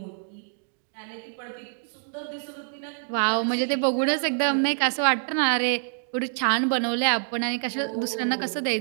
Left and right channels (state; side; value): silent; left; 61 dB below the other